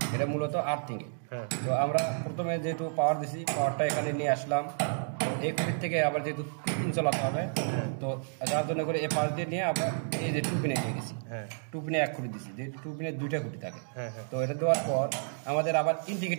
এটা মূলত আর্থিং এ। তো আমরা প্রথমে যেহেতু পাওয়ার দিছি, পাওয়ারটা এখানে নিয়ে আসলাম, এই খুঁটির থেকে আবার যেহেতু 2 পিন চালাতে হবে, তো যার জন্য করে এই পাশ দিয়ে নিয়ে আমরা এই যে 2 পিনে দিয়ে দিছি, 2 পিনে এক খুঁটি দিছি, যে 2 পিনে 2টা খুঁটি থাকে। তো এটা দেওয়ার পর আমাদের আবার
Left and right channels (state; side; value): silent; left; digital silence